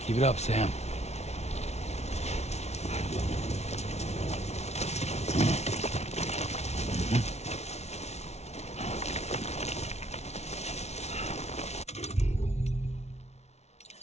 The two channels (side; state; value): right; late; 0.31 ms